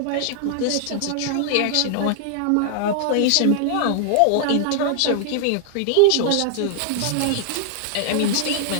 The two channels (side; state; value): both; different; correlation 0.00